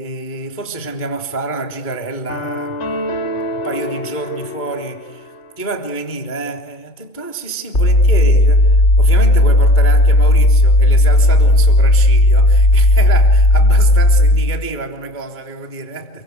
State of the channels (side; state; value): right; late; 2.2 ms